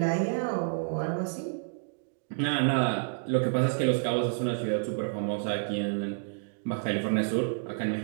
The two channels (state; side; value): silent; left; digital silence